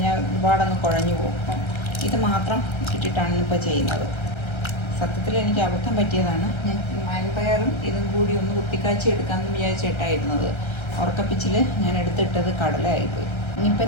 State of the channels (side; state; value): right; late; 1.3 ms